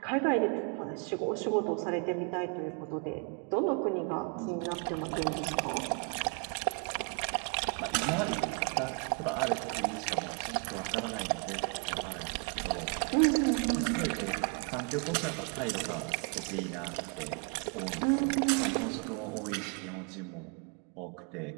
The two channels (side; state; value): left; quieter; 37.4 dB